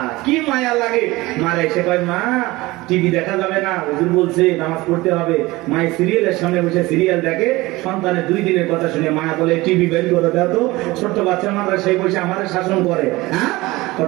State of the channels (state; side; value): quieter; left; 20.4 dB